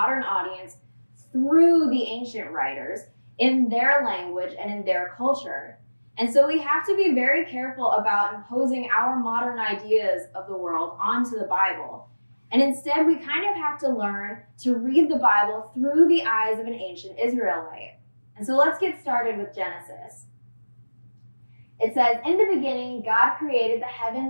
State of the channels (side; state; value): both; inverted; correlation -1.00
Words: audience, through the ancient writers in their language and in their culture. And so we have to be very careful about imposing our modern ideas of the world onto the Bible. And instead, we kind of have to learn to read the Bible through the eyes of an ancient Israelite. And so let's get started with Genesis. It says, in the beginning, God created the